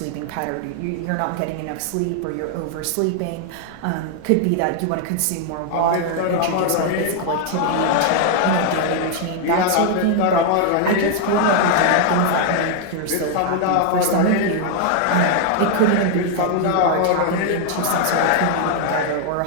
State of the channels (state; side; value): different; both; correlation 0.00